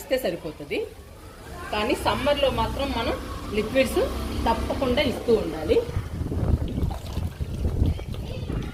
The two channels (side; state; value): both; identical; correlation 1.00